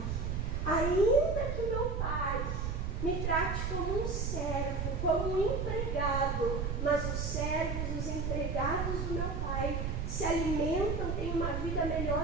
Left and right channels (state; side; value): noise; right; rumble, 1 dB below the sound